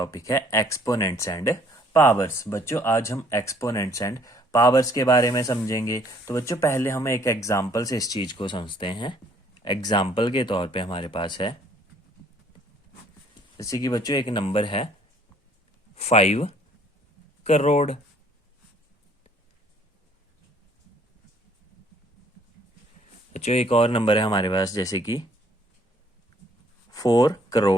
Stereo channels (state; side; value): normal; both; correlation 0.61